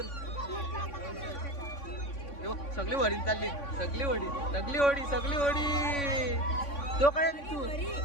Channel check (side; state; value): right; late; 3.5 ms